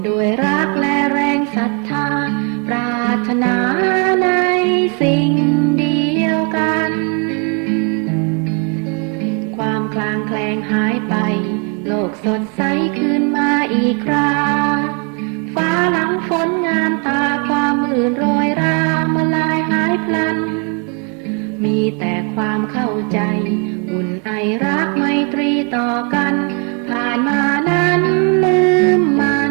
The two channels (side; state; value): left; quieter; 36.5 dB